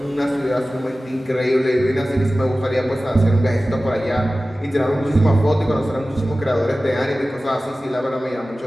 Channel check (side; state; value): both; normal; correlation 0.96